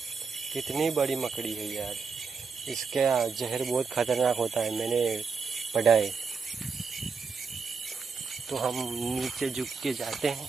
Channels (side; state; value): left; quieter; 5.2 dB